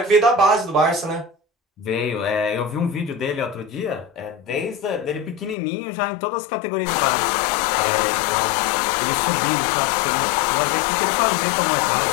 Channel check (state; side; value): drops out; right; at 5.6 s